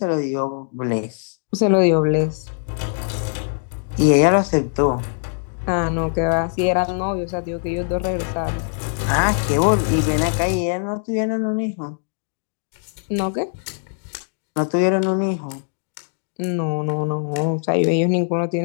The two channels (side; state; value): right; silent; digital silence